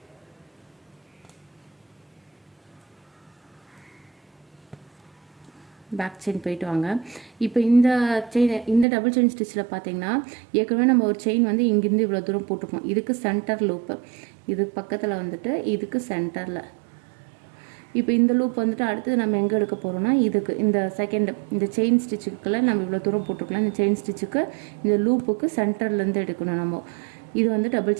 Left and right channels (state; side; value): drops out; left; at 8.8 s